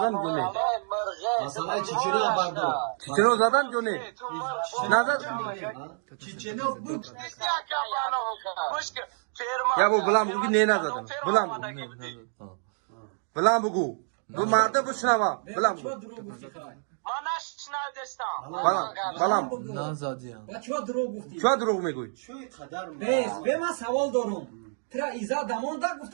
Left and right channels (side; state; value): left; silent; 59 dB below the other